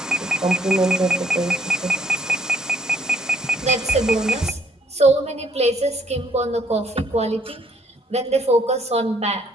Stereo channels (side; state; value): both; normal; correlation 0.66